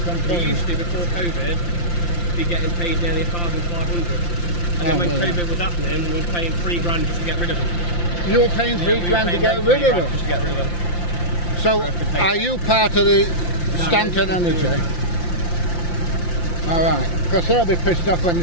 container? We used to, before COVID, be getting paid nearly 1,500. And then when COVID was happening, we were paying £3 just to get rid of them. You were paying £3 to get rid of them? Just to get rid of them. So, are you part of the Stanton Energy? Alright, because they'll be pissed off when they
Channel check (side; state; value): right; late; 5.8 ms